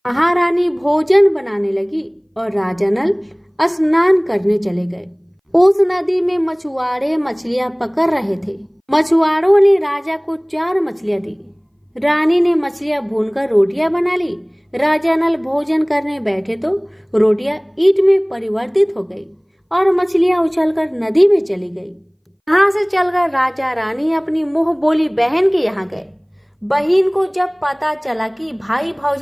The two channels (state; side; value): identical; both; correlation 1.00